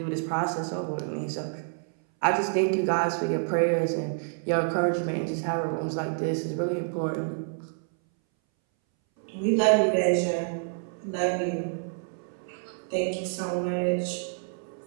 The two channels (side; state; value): left; silent; 59 dB below the other